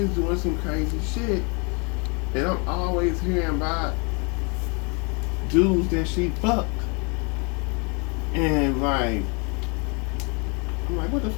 doing some crazy shit. And I'm always hearing about dudes that she fucked. And like, I'm like, what the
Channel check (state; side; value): quieter; right; 33.4 dB